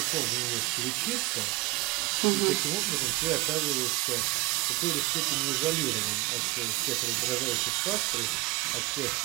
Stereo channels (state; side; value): quieter; left; 22.6 dB